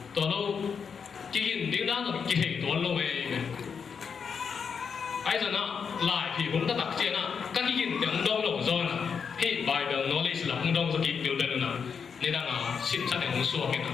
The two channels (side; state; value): right; quieter; 6.4 dB